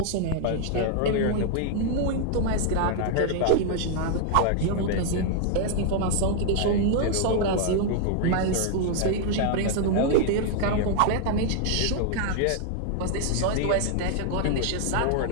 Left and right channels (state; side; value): different; both; correlation 0.00